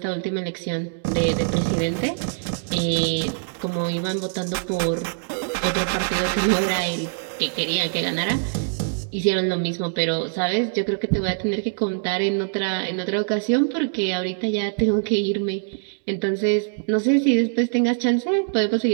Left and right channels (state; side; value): silent; left; digital silence